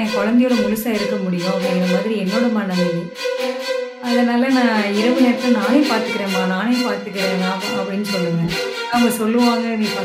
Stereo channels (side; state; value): both; identical; correlation 1.00